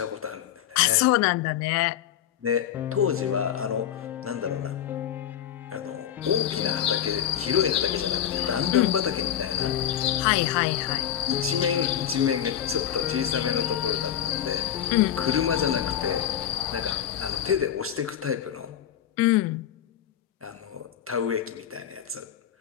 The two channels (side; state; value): right; quieter; 10.2 dB